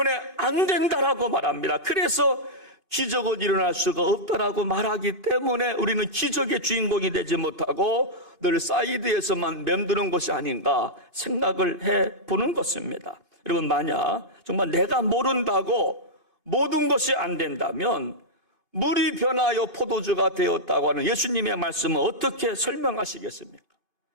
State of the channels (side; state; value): right; late; 2.8 ms